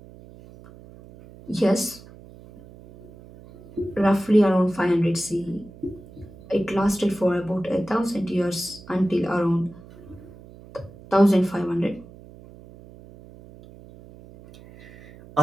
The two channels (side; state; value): right; noise; hum, 20 dB below the sound